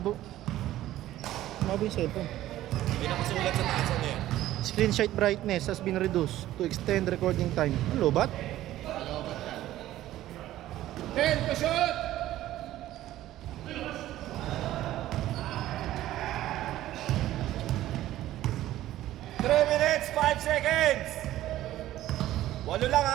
Lumabo yung cellphone. Hindi nakasulat sa taas ano yan. Screenshot brightness has been reduced to extend recording time. Ang lobat? 10 to shoot. Three minutes, 5 seconds. 8 lang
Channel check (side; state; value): left; quieter; 14.3 dB